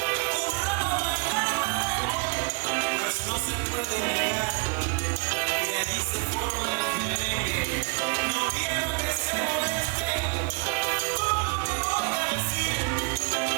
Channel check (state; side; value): quieter; left; 31.7 dB